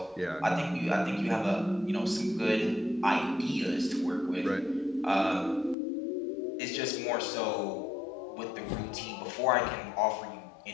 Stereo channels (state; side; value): drops out; right; at 5.8 s